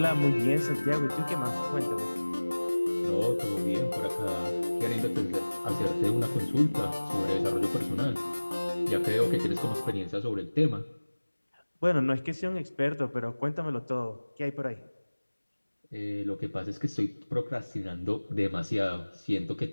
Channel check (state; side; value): inverted; both; correlation -1.00